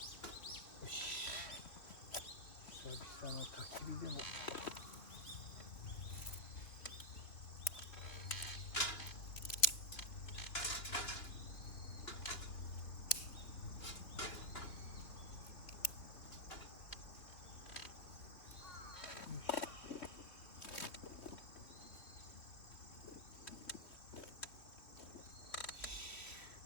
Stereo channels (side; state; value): right; late; 3.2 ms